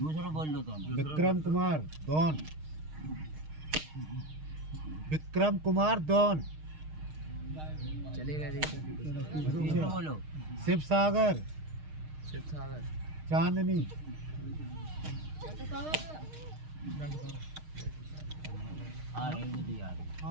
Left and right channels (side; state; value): left; late; 6.5 ms